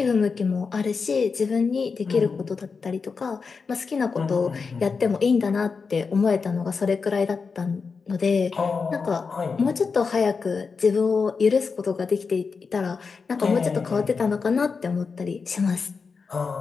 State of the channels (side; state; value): right; quieter; 5.1 dB